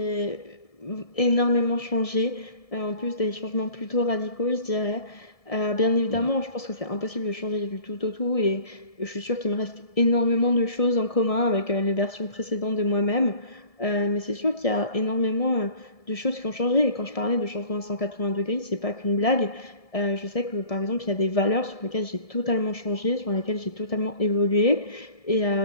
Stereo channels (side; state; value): right; late; 1.7 ms